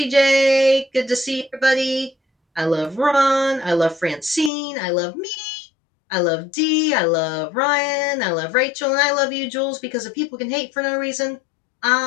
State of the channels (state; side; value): drops out; right; at 4.5 s